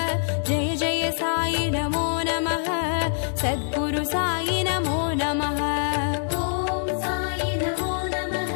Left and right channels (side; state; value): right; silent; digital silence